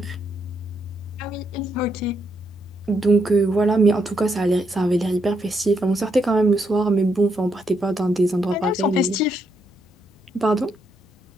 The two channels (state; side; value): normal; both; correlation 0.78